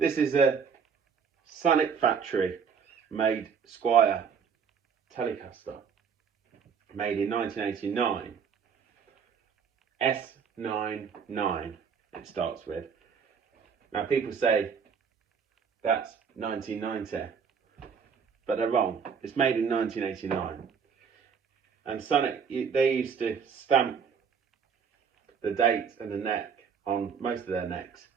is a Samick factory made Squier telecaster, made in 1989. S99 it starts with. Now people say that's 1990, but they're wrong. It's made in 1989. And Samick, they used to stamp the date and the neck on most of their necks.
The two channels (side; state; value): left; quieter; 6.6 dB